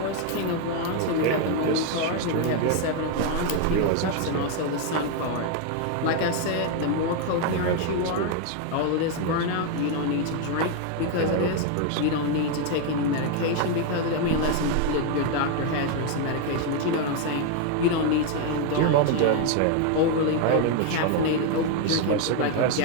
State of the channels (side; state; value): both; different; correlation 0.01